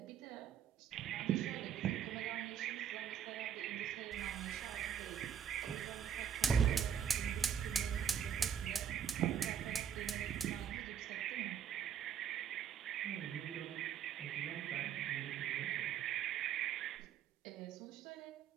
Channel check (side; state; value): left; quieter; 8.3 dB